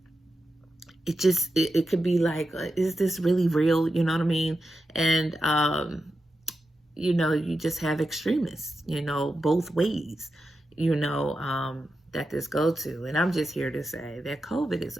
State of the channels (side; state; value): both; normal; correlation 0.89